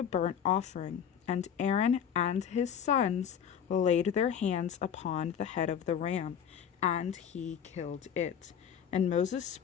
burnt offering, and Aaron and his sons laid their hands upon the head of the ram, and he killed it. And Moses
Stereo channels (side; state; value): right; quieter; 8.3 dB